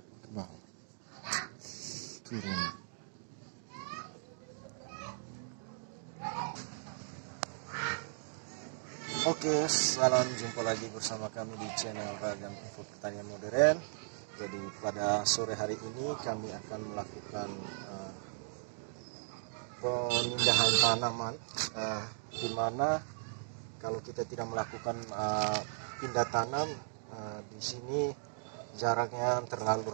ke bawah, turun. Oke, salam jumpa lagi bersama kami di channel Ragam Info Pertanian Modern. Jadi pada sore hari ini kami akan melakukan pemindahan tanaman, di mana kalau kita tidak melakukan pindah tanam di sini jaraknya terlalu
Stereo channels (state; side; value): silent; left; digital silence